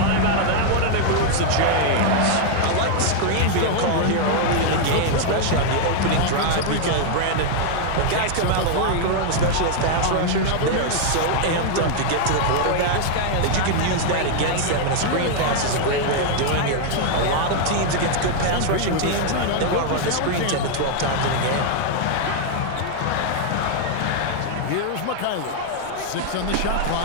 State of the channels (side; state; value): both; different; correlation 0.00